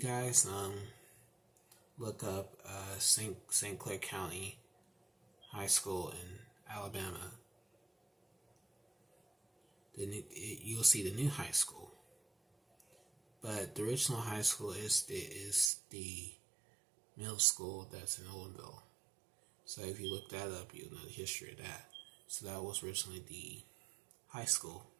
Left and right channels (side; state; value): left; drops out; at 15.7 s